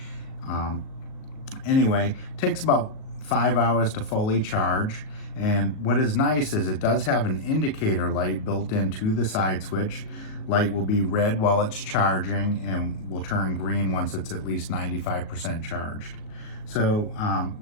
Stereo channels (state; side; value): late; right; 38 ms